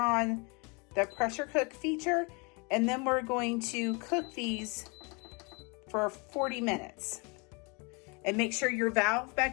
the pressure cook feature, and then we're going to cook these for 40 minutes. And make sure your valve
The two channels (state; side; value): quieter; right; 30.9 dB